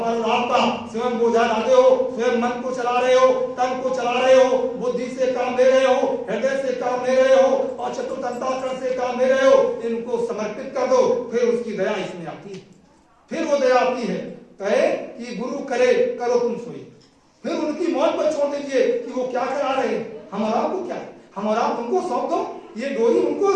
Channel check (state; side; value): identical; both; correlation 1.00